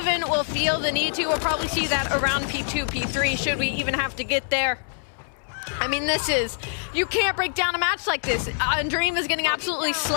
will feel the need to. We'll probably see that around P2, P3, should we even have to get there. I mean, you can't break down a match like this. Undream is getting absolutely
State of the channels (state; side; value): silent; right; digital silence